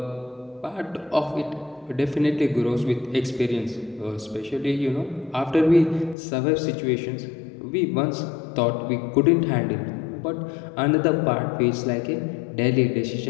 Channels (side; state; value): right; drops out; at 6.2 s